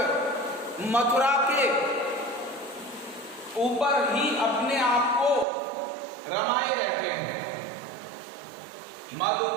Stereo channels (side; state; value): left; drops out; at 5.5 s